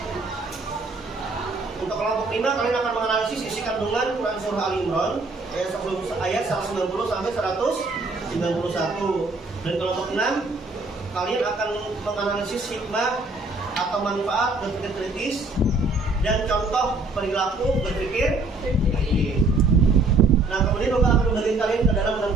Untuk kelompok 5, kalian akan menganalisis isi kandungan Quran Surah Ali Imran ayat 190 sampai 191. Dan kelompok 6, kalian akan menganalisis hikmah atau manfaat berpikir kritis dan contoh perilaku berpikir kritis. Nah, kemudian Bapak akan membagi kalian ke dalam 6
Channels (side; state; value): left; quieter; 3.3 dB